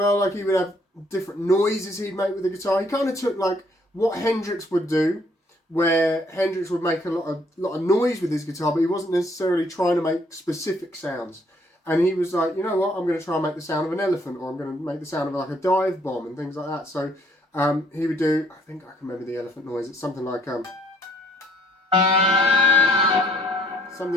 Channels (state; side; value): normal; both; correlation 0.64